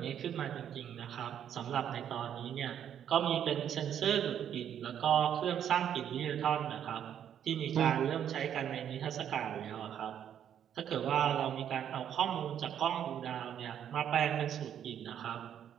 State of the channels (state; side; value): quieter; left; 9.5 dB